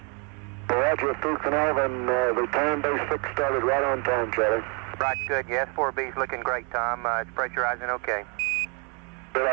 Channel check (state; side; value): quieter; left; 35.5 dB